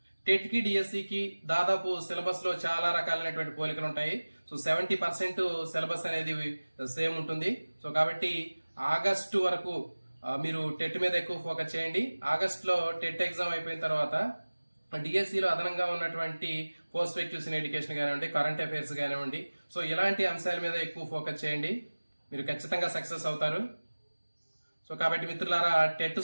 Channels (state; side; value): inverted; both; correlation -1.00